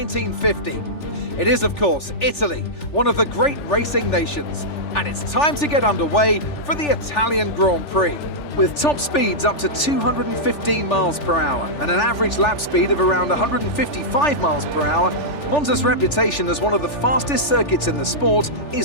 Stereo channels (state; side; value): late; right; 3.4 ms